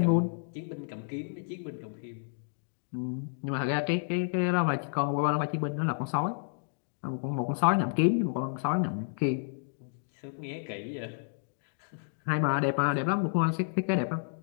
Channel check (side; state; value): right; silent; digital silence